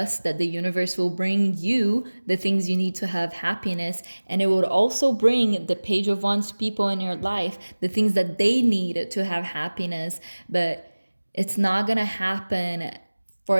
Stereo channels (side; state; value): both; inverted; correlation -1.00